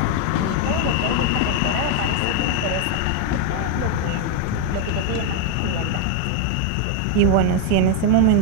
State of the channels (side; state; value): both; different; correlation 0.01